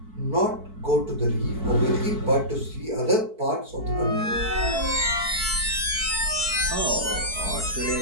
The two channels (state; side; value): late; left; 4.6 ms